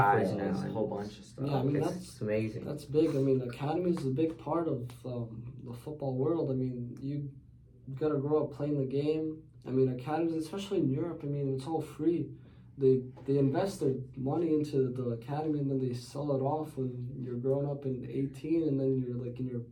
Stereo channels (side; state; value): both; identical; correlation 1.00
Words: now. A whole bunch of stuff. Yeah, I mean, it's amazing. That's big. I mean, academy is a big part of the football world. I mean, you gotta grow up playing the game. I mean, academies, especially in Europe, I mean, it's all free. They invest their money into the academy, and then they sell it off when you're grown up in 18, and then you're like in your